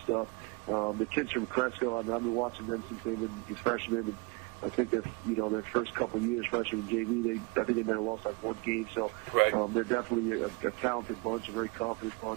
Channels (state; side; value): quieter; left; 27.4 dB